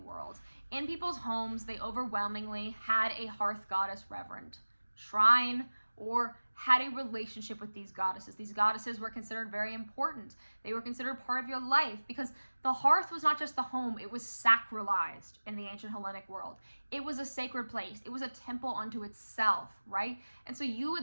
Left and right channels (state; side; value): inverted; both; correlation -1.00